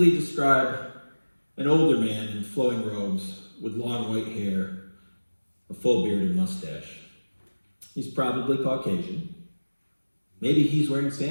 describe an older man in flowing robes with long white hair, a full beard and mustache. He's probably Caucasian. Maybe he's wearing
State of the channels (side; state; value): both; inverted; correlation -1.00